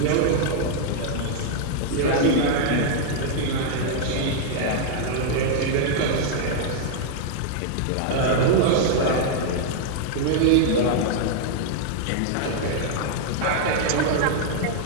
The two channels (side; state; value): both; different; correlation -0.01